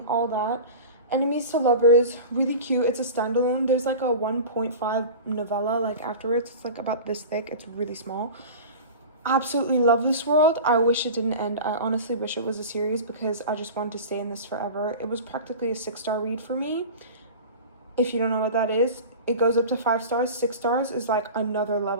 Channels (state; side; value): inverted; both; correlation -0.33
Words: all that. Enemies to Lovers, really cute. It's a standalone. There's like a 1.5 novella like afterwards. It's like about this thick. It's really small. Absolutely love this world. I wish it didn't end. I honestly wish it was a series because I just wanted to stay in this forever. It was practically a 6-star read for me. If you don't know what that is, it goes up to 5 stars. 6 stars is like another